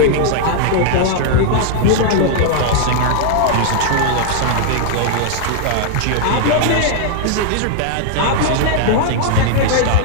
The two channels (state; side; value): different; both; correlation 0.00